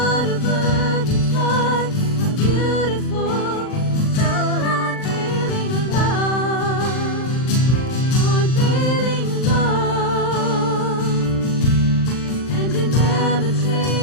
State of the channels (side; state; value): right; late; 39 ms